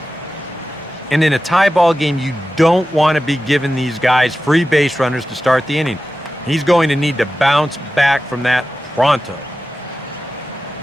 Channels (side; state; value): both; normal; correlation 0.94